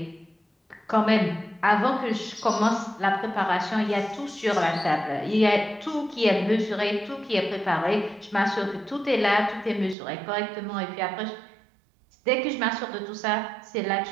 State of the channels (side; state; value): left; drops out; at 10.0 s